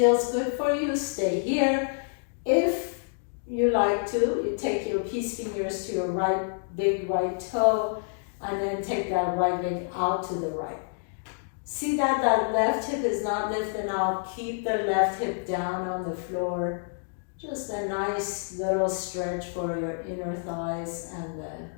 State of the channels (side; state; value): right; silent; digital silence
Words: good for you, stay here. If you like to, you take your peace fingers to your big right toe, and then take that right leg out to the right. See that left hip is not lifting out. Keep the left hip down on the floor. Just a nice little stretch for your inner thighs and